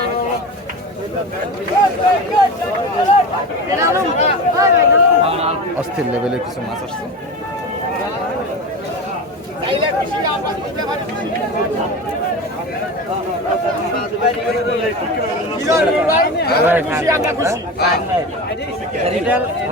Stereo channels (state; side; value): normal; both; correlation 0.27